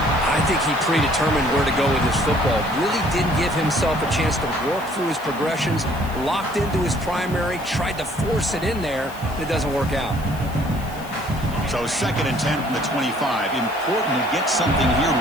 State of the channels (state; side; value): noise; left; hiss, 19 dB below the sound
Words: I think he predetermined where to go with his football. Really didn't give himself a chance to work through his progressions, locked into his primary, tried to force it in there, and it doesn't work out. So 2nd and 10 from the 25. Important to get something here